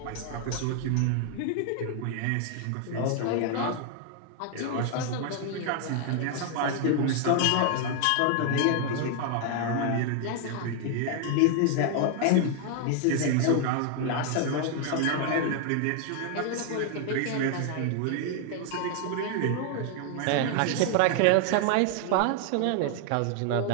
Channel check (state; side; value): different; both; correlation 0.00